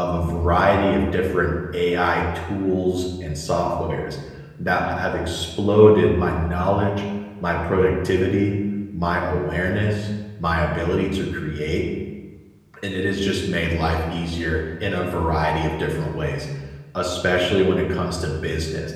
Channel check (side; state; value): both; identical; correlation 1.00